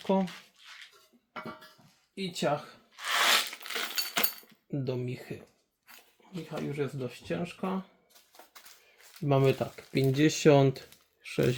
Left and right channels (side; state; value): both; identical; correlation 1.00